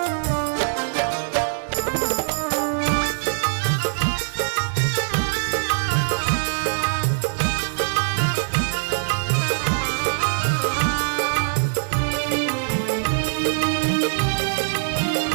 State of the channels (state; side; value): silent; left; digital silence